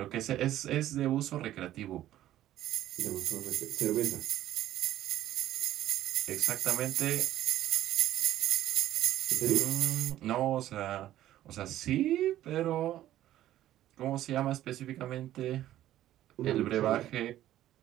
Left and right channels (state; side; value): quieter; left; 13.3 dB